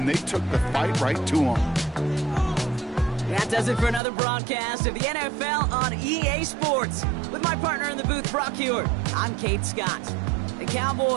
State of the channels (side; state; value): left; drops out; at 4.0 s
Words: they took the fight right to them. That does it for another broadcast of the NFL on EA Sports. With my partner in the booth, Brock Hewitt, I'm Kate Scott. The